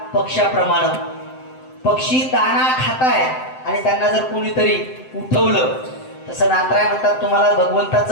पक्ष्याप्रमाणे. पक्षी दाणा खाताय आणि त्यांना जर कोणीतरी उठवलं, तसं नाथराय म्हणतात तुम्हाला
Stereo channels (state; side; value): late; right; 7.8 ms